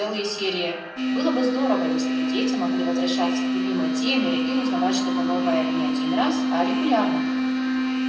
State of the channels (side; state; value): both; identical; correlation 1.00